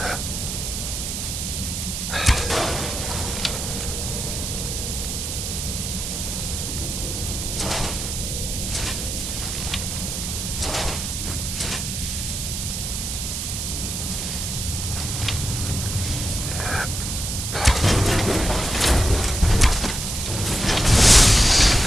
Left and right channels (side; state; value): right; noise; hiss, 4 dB below the sound